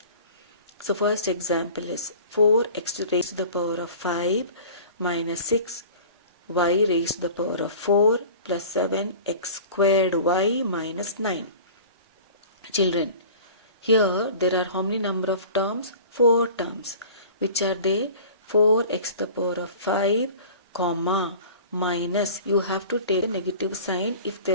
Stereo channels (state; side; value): inverted; both; correlation -0.42